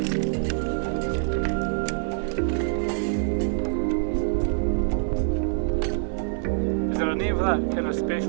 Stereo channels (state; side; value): silent; left; digital silence